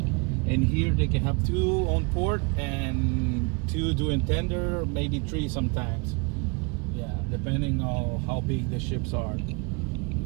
here they can have 2 on port and 2 doing tender, maybe 3 sometimes. Yeah, depending on how big the ships are.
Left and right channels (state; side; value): quieter; left; 31.3 dB